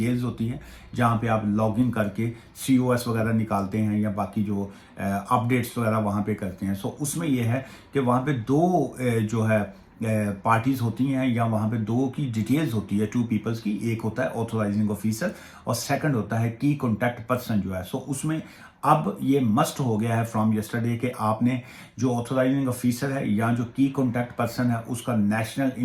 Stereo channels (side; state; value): both; identical; correlation 1.00